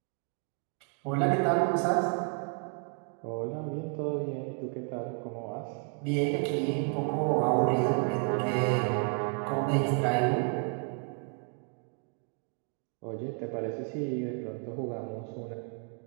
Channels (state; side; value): quieter; left; 36.1 dB